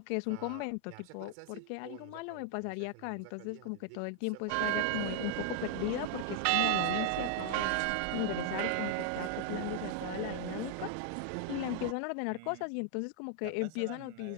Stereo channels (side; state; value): both; different; correlation 0.00